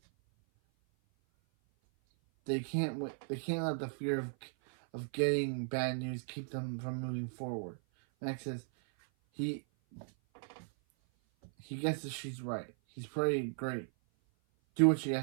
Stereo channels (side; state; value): left; silent; 53 dB below the other